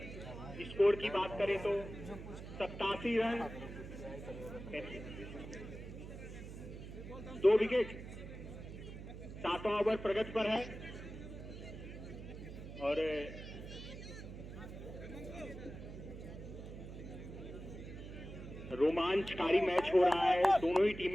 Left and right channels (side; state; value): right; noise; hum, 11 dB below the sound